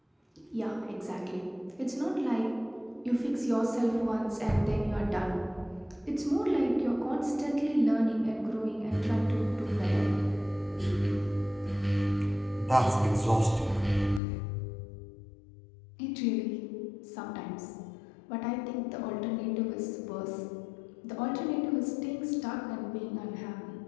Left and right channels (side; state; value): right; drops out; at 14.2 s